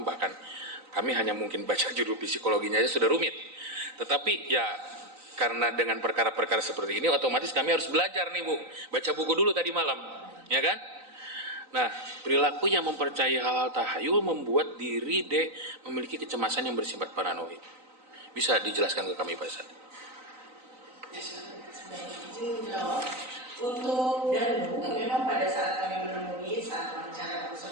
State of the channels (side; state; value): left; late; 3.9 ms